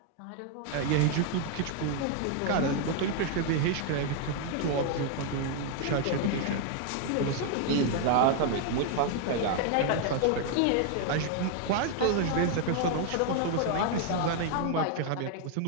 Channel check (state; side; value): different; both; correlation 0.00